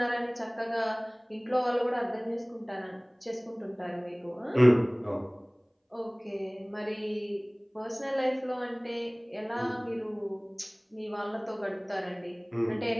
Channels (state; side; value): identical; both; correlation 1.00